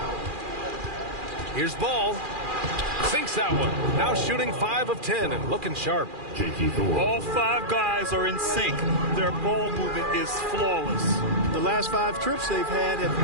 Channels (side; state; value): left; late; 2.4 ms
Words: Here's Ball. Sinks that one. Now shooting 5 of 10 and looking sharp. All 5 guys are in sync. Their ball movement is flawless. The last 5 trips they've had have